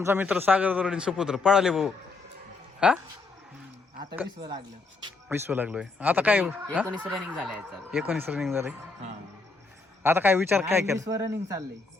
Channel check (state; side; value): quieter; right; 3.9 dB